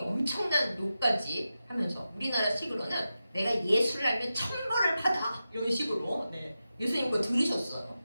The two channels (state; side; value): inverted; both; correlation -0.92